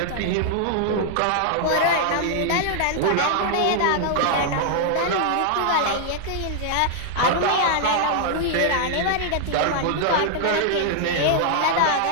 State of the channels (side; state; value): both; different; correlation 0.00